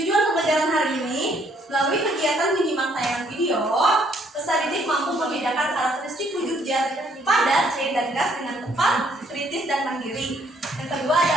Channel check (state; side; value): normal; both; correlation 0.67